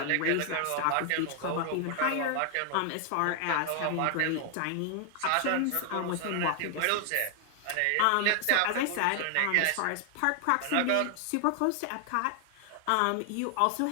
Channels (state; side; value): different; both; correlation 0.00